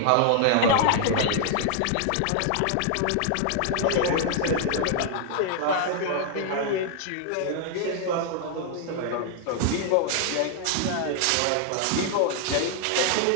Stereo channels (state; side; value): different; both; correlation 0.00